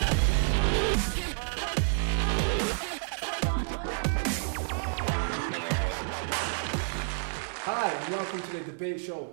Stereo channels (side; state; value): left; silent; digital silence